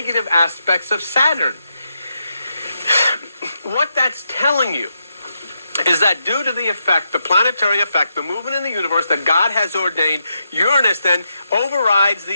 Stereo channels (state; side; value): inverted; both; correlation -0.83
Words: aspects of Saturn. What that's telling you is that due to the effect, the planetary effect, the movement in the universe that God has ordained, Uranus then overrides